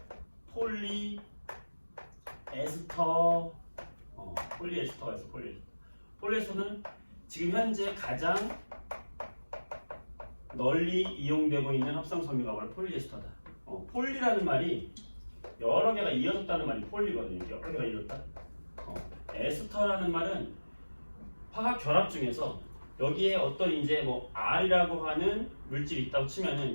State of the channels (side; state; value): both; inverted; correlation -1.00